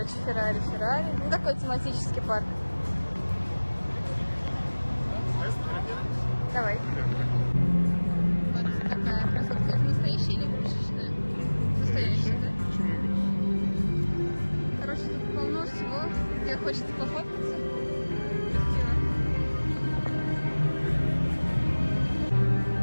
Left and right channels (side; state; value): both; inverted; correlation -1.00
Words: Феррари. Ну, такой тематический парк. Давай. Вот такая красотка. Это настоящая или игрушечная? Настоящая, да? Почему игрушечная? Короче, тут полно всего, где хочется пофоткаться. Красиво.